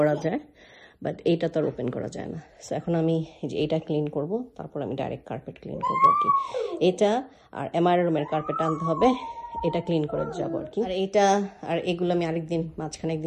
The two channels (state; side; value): identical; both; correlation 1.00